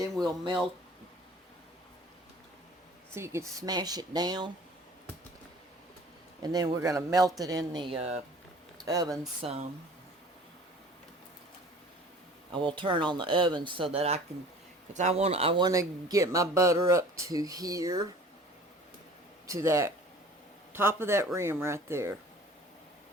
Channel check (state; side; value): normal; both; correlation 0.47